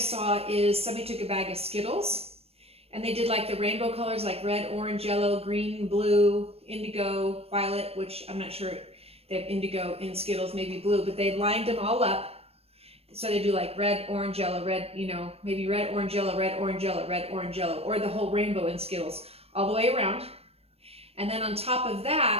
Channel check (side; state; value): left; late; 0.29 ms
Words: is somebody took a bag of Skittles and they did like the rainbow colors, like red, orange, yellow, green, blue, indigo, violet, which I'm not sure they have indigo in Skittles, maybe blue, but they lined them all up. So they do like red, orange, yellow, red, you know, maybe red, orange, yellow, red, orange, yellow, red, orange, yellow, or the whole rainbow in Skittles all the way around. And then on top of